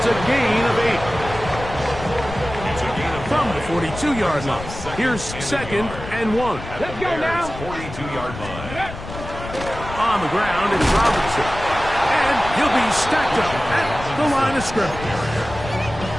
a gain of 8. From the 42-yard line. Here's 2nd and 1. Let's go now. 42-yard line. On the ground, it's Robinson. And he'll be stacked up at the line of scrimmage.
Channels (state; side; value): noise; left; rumble, 11 dB below the sound